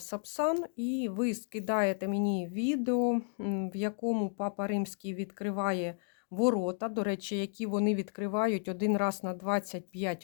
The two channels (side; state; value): right; silent; 56 dB below the other